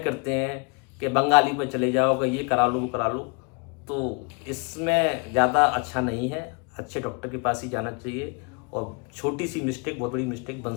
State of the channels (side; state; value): right; quieter; 33.8 dB